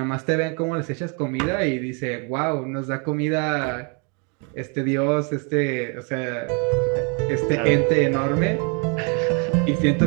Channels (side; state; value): left; quieter; 36.0 dB